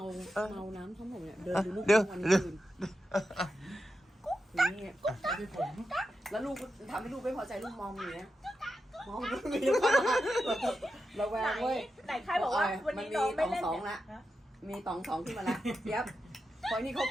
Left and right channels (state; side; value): normal; both; correlation 0.89